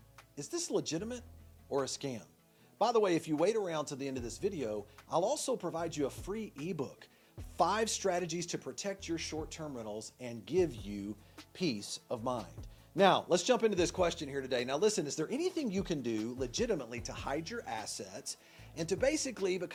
Is this legitimate or a scam? By the way, if you wait around to the end of this video, I'll also provide you a free ebook, 5 strategies to protect your short-term rentals and give you peace of mind. Now, let's jump into this question here today. Now listen, is there anything you can do legitimately to hide your assets and to basically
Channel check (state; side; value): identical; both; correlation 1.00